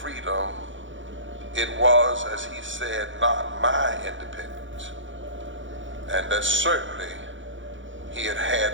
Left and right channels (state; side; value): late; left; 0.56 ms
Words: it was, as he said, not my independence, and that certainly he had